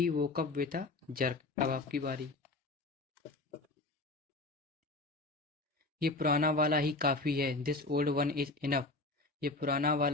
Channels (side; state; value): right; quieter; 3.1 dB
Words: woke up with a jerk। अब आपकी बारी। ये पुराना वाला ही काफी है, this old one is enough. ये पुराना